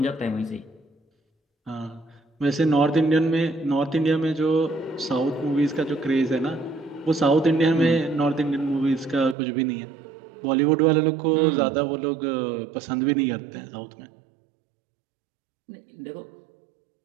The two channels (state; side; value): drops out; left; at 9.3 s